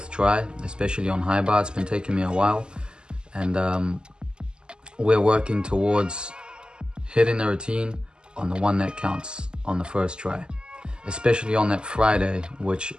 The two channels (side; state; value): left; late; 0.048 ms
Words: try, especially on high bar. It's been taking me a while, and we're working towards hitting the routine on the one that counts on the first try, especially on that Friday, which